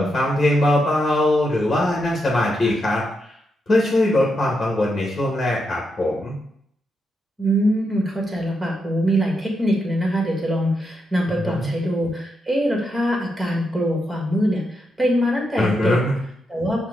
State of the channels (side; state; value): both; normal; correlation 0.83